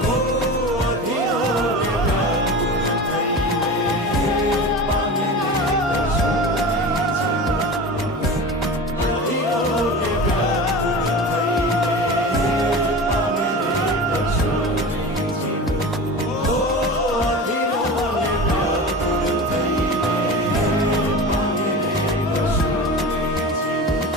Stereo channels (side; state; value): both; normal; correlation 0.31